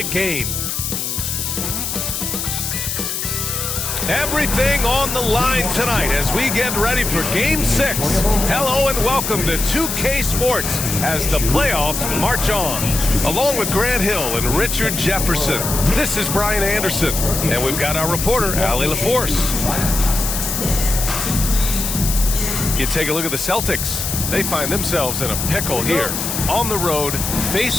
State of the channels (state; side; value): noise; left; hiss, 3 dB below the sound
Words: game. Everything on the line tonight as we get ready for Game 6. Hello and welcome to 2K Sports as the playoffs march on. Along with Grant Hill and Richard Jefferson, this is Brian Anderson, and we've got our reporter, Allie LaForce. You take a look at the Celtics. They find themselves in a pickle here. On the road,